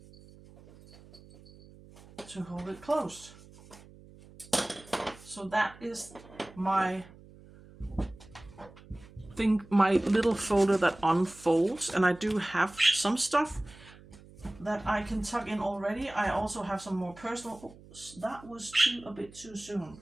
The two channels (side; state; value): right; noise; hum, 21 dB below the sound